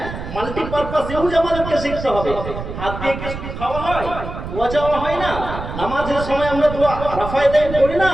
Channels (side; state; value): right; noise; rumble, 8 dB below the sound